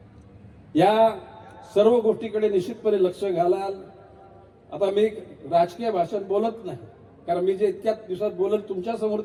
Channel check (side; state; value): both; identical; correlation 1.00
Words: या सर्व गोष्टीकडे निश्चितपणे लक्ष घालाल. आता मी राजकीय भाषण बोलत नाही, कारण मी जे इतक्या दिवसात बोलत तुमच्या समोर